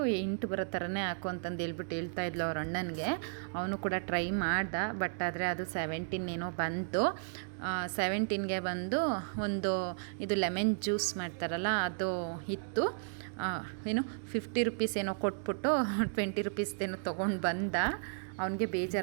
8 ಬರೋ ಥರನೇ ಹಾಕು ಅಂತಂದೇಳ್ಬಿಟ್ಟು ಹೇಳ್ತಾಯಿದ್ಲು ಅವ್ರ ಅಣ್ಣನಿಗೆ. ಅವನು ಕೂಡ ಟ್ರೈ ಮಾಡ್ದ, ಬಟ್ ಆದರೆ ಅದು 17 ಏನೋ ಬಂತು. 17ಗೆ ಬಂದು ಒಂದು ಇದು ಲೆಮನ್ ಜ್ಯೂಸ್ ಮಾಡ್ತಾರಲ್ಲ ಅದು ಇತ್ತು. ಏನು 50 ರುಪೀಸ್ ಏನೋ ಕೊಟ್ಬಿಟ್ಟು 20 ರುಪೀಸ್ದೇನೋ ತೊಗೊಂಡು ಬಂದ. ಅವನಿಗೆ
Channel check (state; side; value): silent; left; digital silence